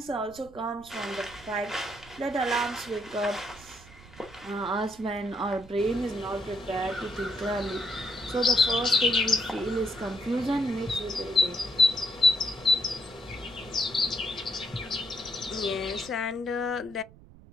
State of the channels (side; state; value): right; noise; rumble, 21 dB below the sound